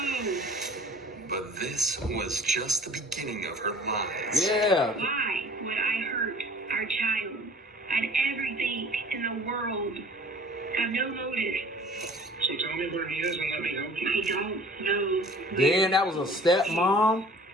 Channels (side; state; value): both; normal; correlation 0.48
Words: But this was just the beginning of her lies. Yeah. Why would I hurt our child? I had everything in the world. Have no motive. So tell me where he is and let me help you. I don't know. Damn, that was a stepmom. All